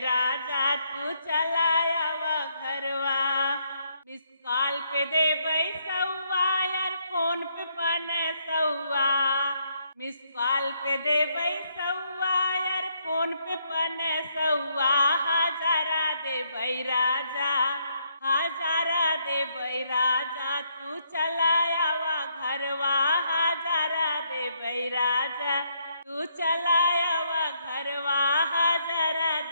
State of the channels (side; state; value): both; inverted; correlation -0.73